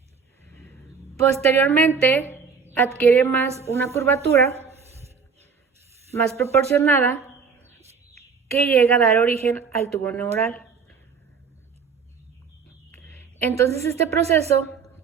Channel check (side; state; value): left; quieter; 5.6 dB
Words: Posteriormente, adquiere una curvatura más proporcionada que llega a dar origen al tubo neural. Entonces, este proceso